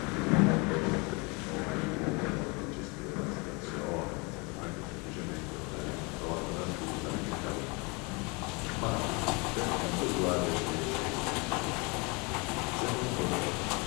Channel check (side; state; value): right; quieter; 29.2 dB